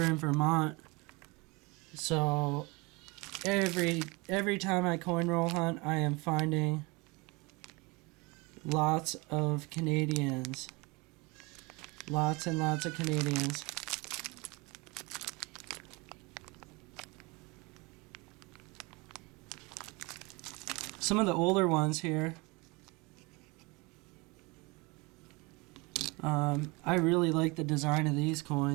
in Vermont. So every time I coin roll hunt, I am finding lots of Canadians. Lots and lots of Canadians. Some of the older ones here. I really like the design of these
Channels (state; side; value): quieter; left; 26.4 dB